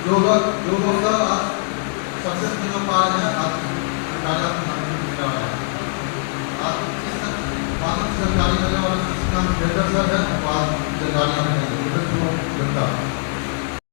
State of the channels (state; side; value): silent; right; digital silence